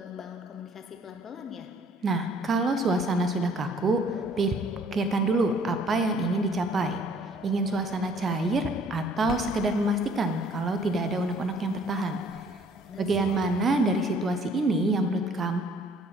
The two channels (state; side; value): normal; both; correlation 0.58